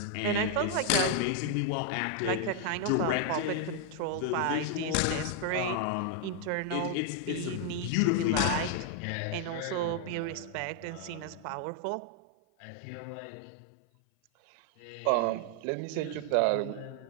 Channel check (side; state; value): both; different; correlation 0.00